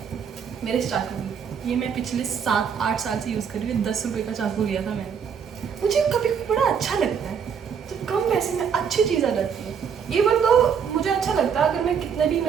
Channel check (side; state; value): left; quieter; 7.1 dB